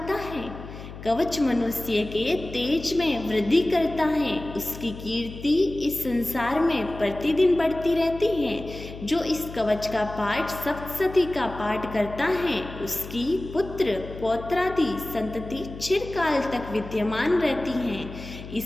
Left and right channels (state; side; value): noise; left; hum, 13 dB below the sound